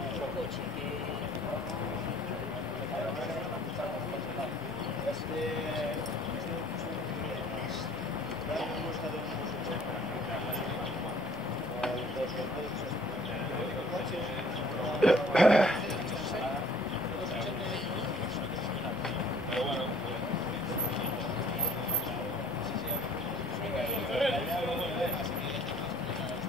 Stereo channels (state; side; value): normal; both; correlation 0.54